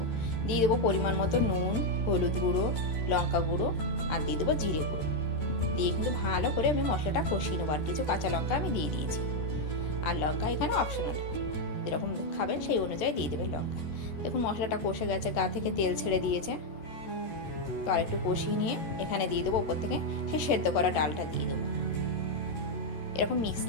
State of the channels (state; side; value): late; right; 13 ms